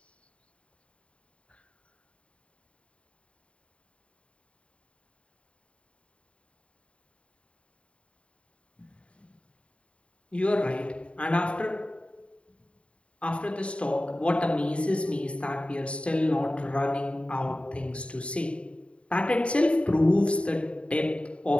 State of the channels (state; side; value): late; right; 0.060 ms